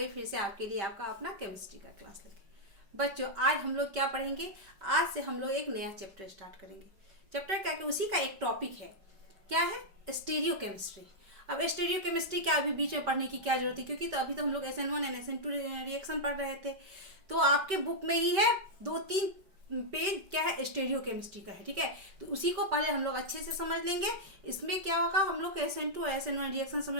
फिर से आपके लिए आपका अपना केमिस्ट्री का क्लास लेके। बच्चों, आज हम लोग क्या पढ़ेंगे? आज से हम लोग एक नया चैप्टर स्टार्ट करेंगे। चैप्टर क्या कि उसी का एक टॉपिक है। क्या है? Stereo chemistry. अब स्टीरियो केमिस्ट्री क्या अभी बीच में पढ़ने की क्या जरूरत है, क्योंकि तो अभी तो हम लोग SN1 एंड SN2 रिएक्शन पढ़ रहे थे। तो आपके बुक में ही है 2-3 पेज क्या है स्टीरियो केमिस्ट्री का है। ठीक है, तो उसी को पहले हम लोग अच्छे से समझ लेंगे। इसमें क्या होगा, हम लोग SN2 और SN1 रिएक्शन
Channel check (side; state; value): left; late; 5.2 ms